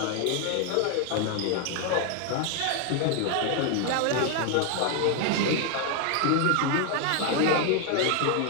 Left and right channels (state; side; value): different; both; correlation 0.01